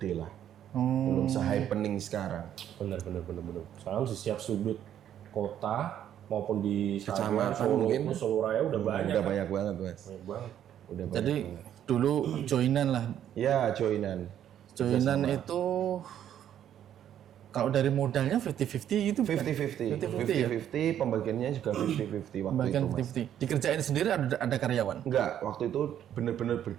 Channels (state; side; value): quieter; left; 10.4 dB